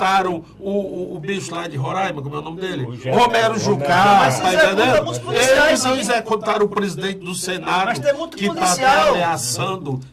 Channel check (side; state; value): both; identical; correlation 1.00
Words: o bicho lá de Roraima, como é o nome dele? Romero Jucá, Mas tá executa entendendo? muitos policiais, Eles não sim. executaram o presidente do Senado, Mas tem muito que está policial. ameaçando